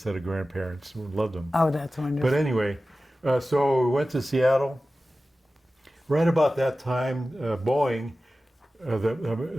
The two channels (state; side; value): normal; both; correlation 0.95